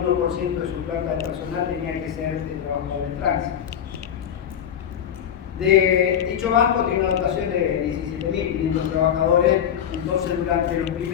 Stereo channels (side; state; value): right; quieter; 9.0 dB